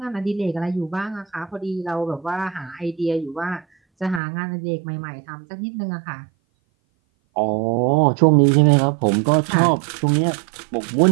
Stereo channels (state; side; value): drops out; left; at 4.2 s